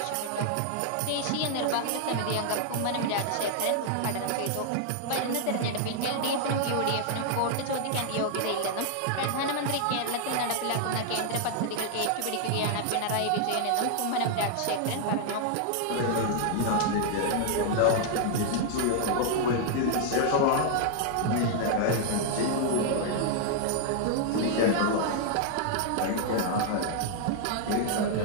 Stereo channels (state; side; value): different; both; correlation 0.00